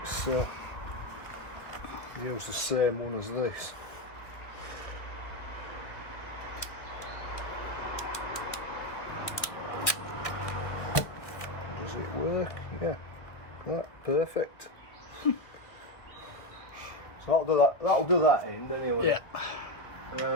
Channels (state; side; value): late; right; 1.7 ms